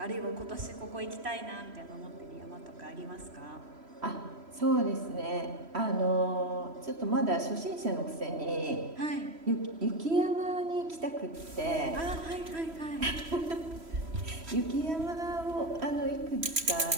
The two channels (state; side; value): late; left; 3.1 ms